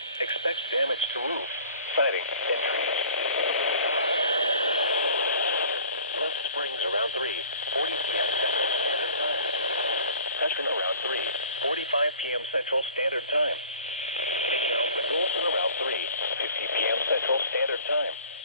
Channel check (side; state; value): both; inverted; correlation -0.46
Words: expect damage to roofs, siding, and trees. Left Springs around 3:40 p.m. Central Standard Time. Session around 3:45 p.m. Central Standard Time. Taking out the Golson around 3:50 p.m. Central Standard Time.